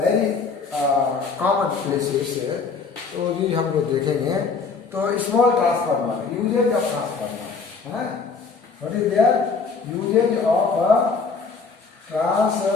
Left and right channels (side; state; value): right; quieter; 4.8 dB